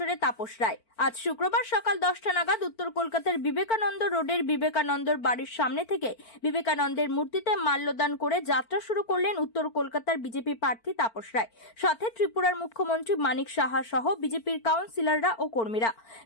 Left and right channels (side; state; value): right; late; 4.4 ms